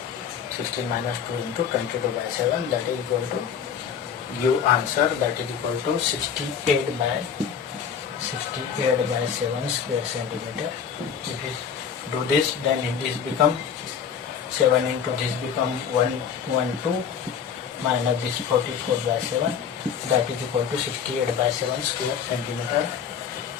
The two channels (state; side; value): quieter; right; 7.4 dB